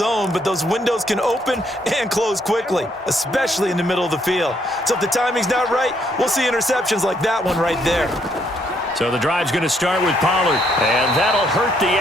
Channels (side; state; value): both; normal; correlation 0.71